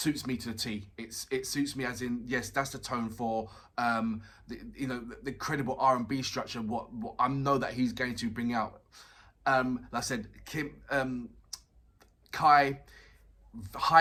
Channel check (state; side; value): identical; both; correlation 1.00